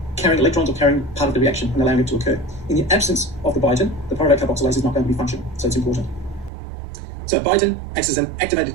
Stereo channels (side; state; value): left; drops out; at 6.5 s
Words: carrying electrons or carrying part of the reaction and allowing it to occur. In the absence of the biotin, the pyruvate carboxylase is not going to be functional, so it's important. So biotin acts as an activated